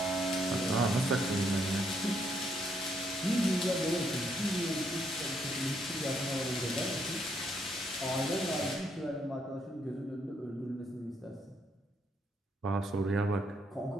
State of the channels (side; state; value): both; normal; correlation 0.73